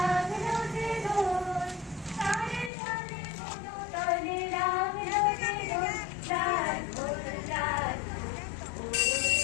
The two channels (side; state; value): right; drops out; at 2.7 s